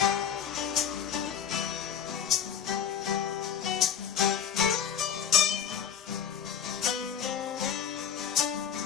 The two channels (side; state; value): right; quieter; 8.3 dB